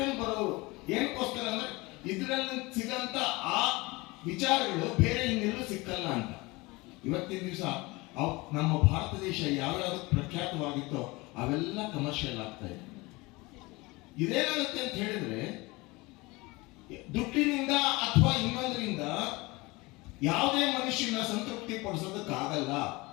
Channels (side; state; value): right; quieter; 23.4 dB